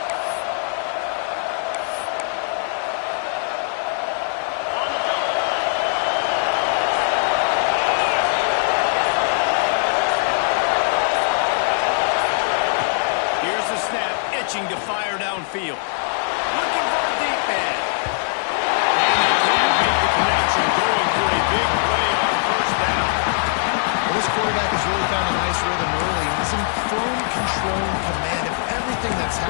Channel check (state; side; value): silent; right; digital silence